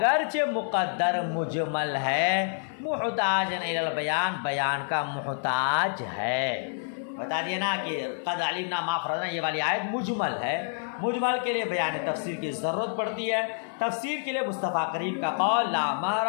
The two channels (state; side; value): silent; right; digital silence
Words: مقدر مجمل ہے، محتاج الی البیان، بیان کا محتاج ہے۔ بتا دیا نا کہ قد علمنا ما فرضنا، یہ والی آیت مجمل ہے، مجمل کے لیے بیان تفسیر کی ضرورت پڑتی ہے۔ تفسیر کے لیے مصطفیٰ کریم کا قول لا مہر